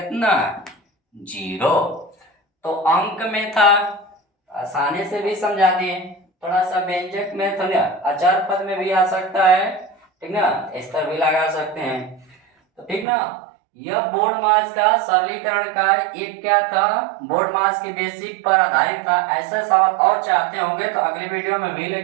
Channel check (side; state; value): left; drops out; at 13.1 s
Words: 0। तो अंक में था, आसानी से भी समझा दिए। थोड़ा सा व्यंजक में तो अचार पद में भी आ सकता है, ठीक ना, इस पर भी लगा सकते हैं। तो ठीक ना, यह बोर्ड मास का सरलीकरण का एक क्या था, बोर्ड मास के बेसिक पर आधारित था। ऐसा सवाल और चाहते होंगे तो अगले वीडियो में भी